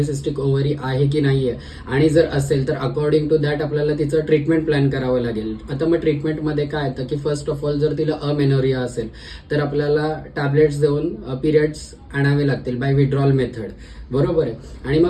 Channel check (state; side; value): identical; both; correlation 1.00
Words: ओव्हरी आहे की नाही आहे, आणि जर असेल तर अकॉर्डिंग टू दॅट आपल्याला तिचं ट्रीटमेंट प्लॅन करावं लागेल. आता मग ट्रीटमेंटमध्ये काय येतं की फर्स्ट ऑफ ऑल जर तिला अमेनोरिया असेल तर आपल्याला टॅबलेट्स देऊन पिरियड्स आणावे लागतील बाय विड्रॉल मेथड, बरोबर आहे. आणि